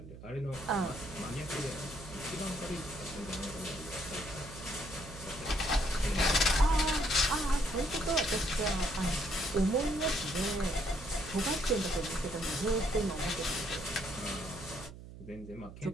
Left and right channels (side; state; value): right; noise; hum, 14 dB below the sound